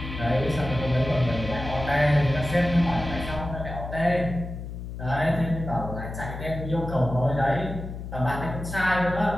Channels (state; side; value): noise; left; hum, 8 dB below the sound